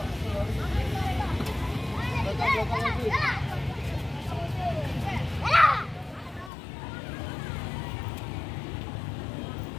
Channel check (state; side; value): drops out; right; at 6.5 s